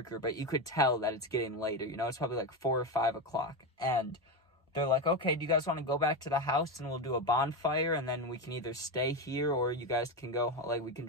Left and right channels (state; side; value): normal; both; correlation 0.14